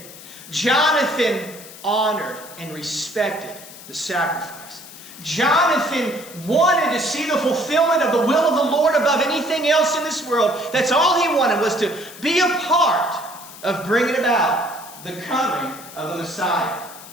Jonathan honored and respected the sacrifice. Jonathan wanted to see the fulfillment of the will of the Lord above anything else in this world. That's all he wanted, was to be a part of bringing about the coming of the Messiah.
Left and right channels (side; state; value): left; noise; hiss, 17 dB below the sound